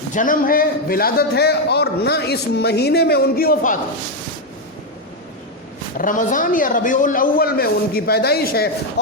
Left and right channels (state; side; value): normal; both; correlation 0.04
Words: جنم ہے، ولادت ہے، اور نہ اس مہینے میں ان کی وفات ہے. رمضان یا ربیع الاول میں ان کی پیدائش ہے